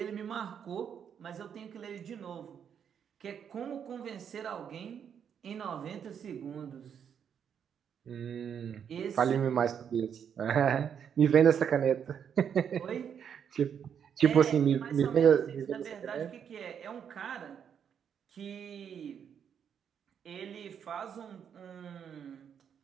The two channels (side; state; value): left; quieter; 8.0 dB